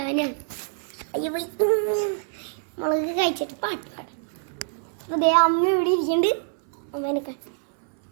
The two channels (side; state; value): left; silent; 61 dB below the other